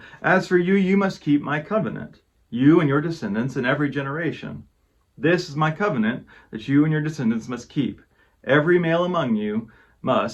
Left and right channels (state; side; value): identical; both; correlation 1.00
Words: As for you, you must keep my covenant, you and your descendants in every generation. This is my covenant that you and your descendants must keep. Every male among you